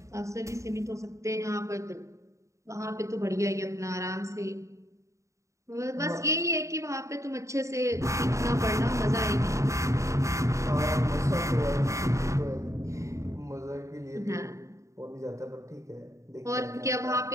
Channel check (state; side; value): late; left; 0.15 ms